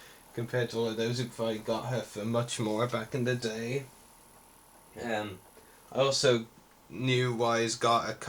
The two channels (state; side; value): identical; both; correlation 1.00